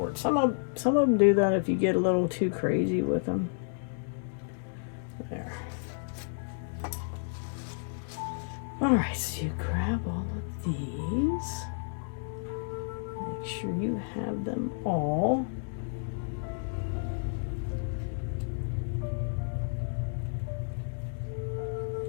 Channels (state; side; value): silent; right; digital silence